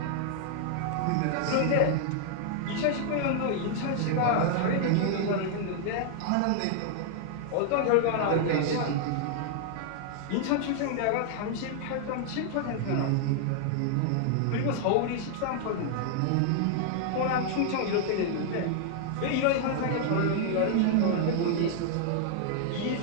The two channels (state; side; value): different; both; correlation 0.00